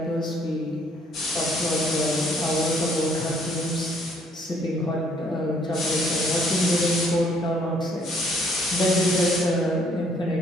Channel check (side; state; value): both; normal; correlation 0.64